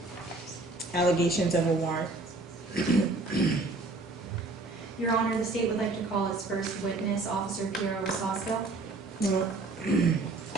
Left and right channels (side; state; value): left; quieter; 3.2 dB